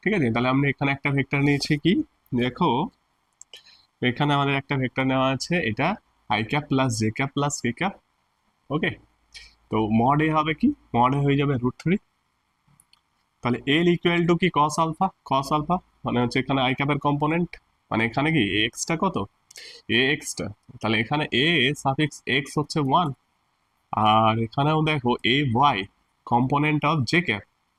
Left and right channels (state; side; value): identical; both; correlation 1.00